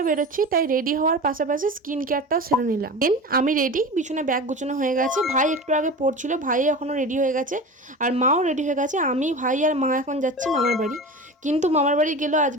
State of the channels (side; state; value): both; normal; correlation 0.31